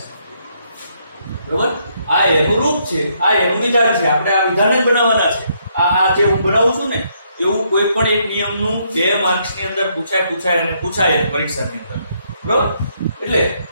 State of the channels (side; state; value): both; inverted; correlation -0.73